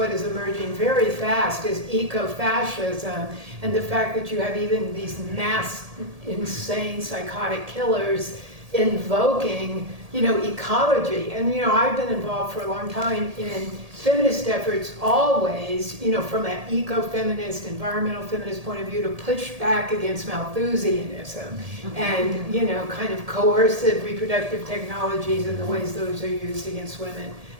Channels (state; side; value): late; left; 1.7 ms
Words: is emerging very fast is eco-fascism, and the fact that you have even these mass, insane, psychotic killers invoking ecology. And, I've been involved for a long time in feminist efforts always, from an eco-feminist, environmental feminist point of view, to push back against Malthusianism and, kind of coercive reproductive technologies and the ways those are used against women